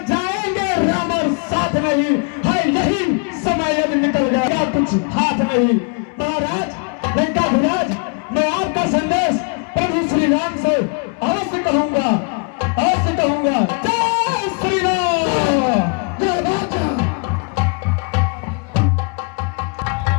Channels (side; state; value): right; quieter; 35.5 dB